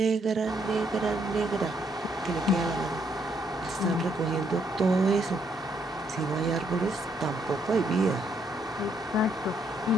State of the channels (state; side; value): normal; both; correlation 0.72